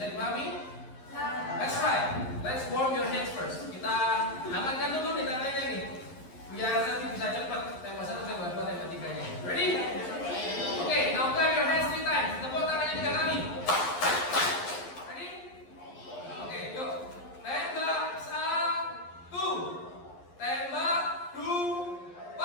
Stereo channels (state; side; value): late; right; 11 ms